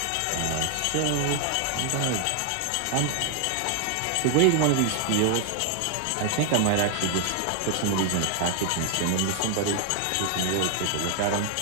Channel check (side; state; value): both; different; correlation 0.00